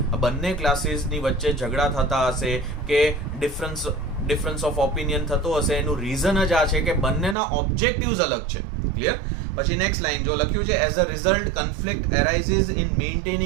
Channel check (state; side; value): drops out; left; at 7.4 s